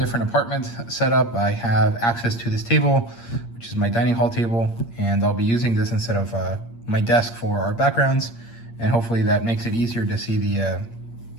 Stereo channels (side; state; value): right; late; 8.6 ms